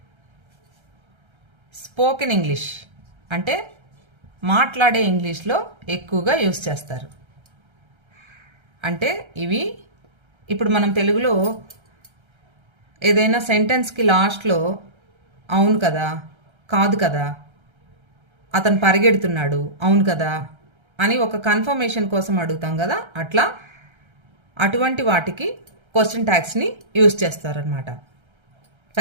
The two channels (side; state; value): left; late; 1.3 ms